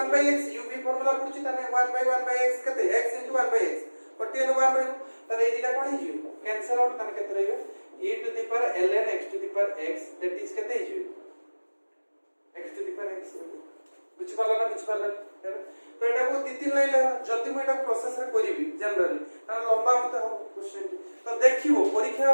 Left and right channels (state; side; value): inverted; both; correlation -1.00